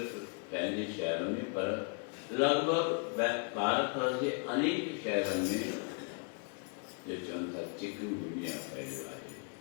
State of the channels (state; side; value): quieter; right; 39.1 dB